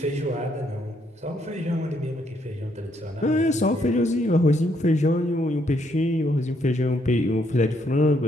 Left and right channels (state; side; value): normal; both; correlation 0.73